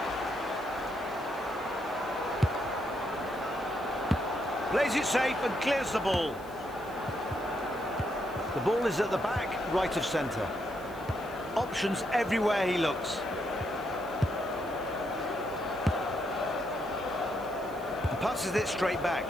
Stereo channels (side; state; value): left; noise; hiss, 23 dB below the sound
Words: Plays it safe and clears the ball. The ball is at the back, right of centre. Options everywhere he looks. And passes it straight back.